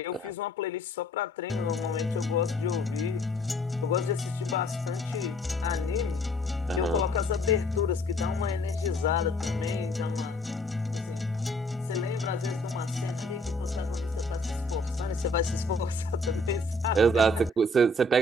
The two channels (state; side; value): normal; both; correlation 0.59